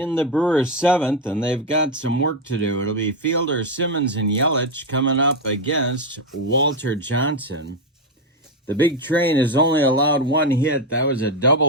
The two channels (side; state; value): both; normal; correlation 0.08